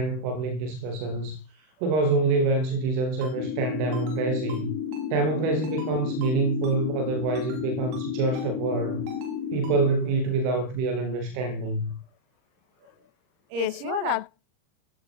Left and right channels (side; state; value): left; late; 39 ms